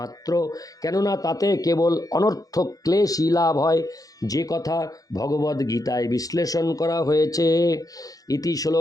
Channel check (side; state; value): right; late; 0.17 ms